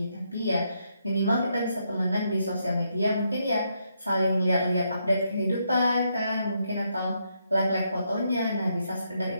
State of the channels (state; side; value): inverted; both; correlation -0.78